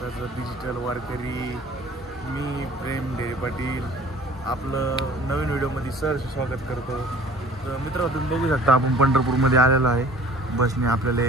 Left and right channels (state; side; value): normal; both; correlation 0.49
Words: डिजिटल वारकरी, मी प्रेम ढेरे पाटील आपलं नवीन व्हिडिओमध्ये सहर्ष स्वागत करतो. तर मित्र तुम्ही बघू शकता आपण पंढरपूरमध्ये आलेलो आहे. बसने आपल्याला